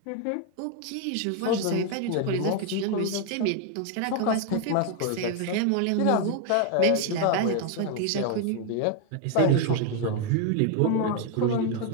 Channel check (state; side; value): different; both; correlation 0.01